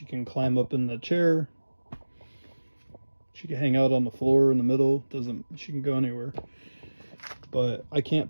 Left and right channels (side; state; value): both; inverted; correlation -1.00